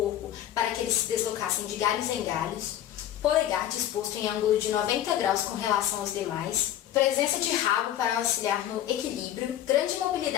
para que eles se deslocassem de galhos em galhos, polegar disposto em ângulo de 90 graus com relação aos demais, presença de rabo para auxiliar no equilíbrio, grande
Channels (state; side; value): quieter; right; 11.8 dB